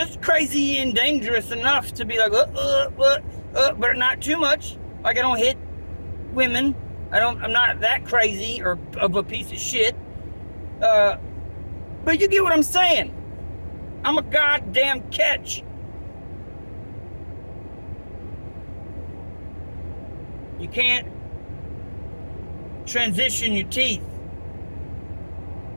crazy and dangerous enough to be like, but not too much. Like I don't hit women. I'm not that crazy or of a piece of shit. But you get what I'm saying. I'm a goddamn catch. You can't transition your teeth.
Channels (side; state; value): both; inverted; correlation -1.00